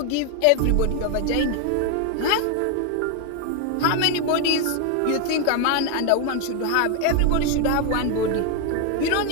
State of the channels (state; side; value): different; both; correlation 0.01